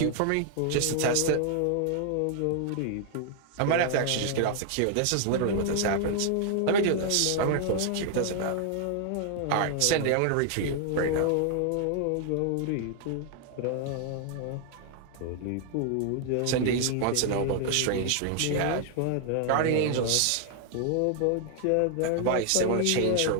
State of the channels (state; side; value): different; both; correlation 0.00